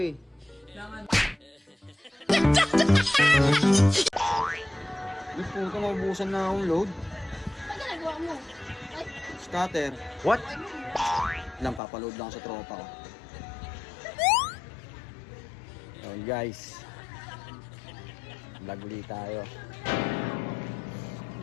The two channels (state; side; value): drops out; right; at 11.8 s